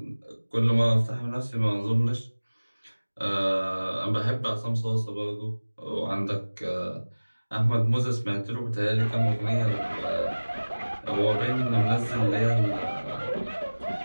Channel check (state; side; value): inverted; both; correlation -1.00